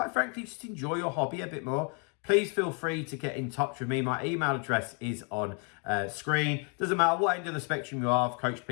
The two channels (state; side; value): quieter; right; 38.1 dB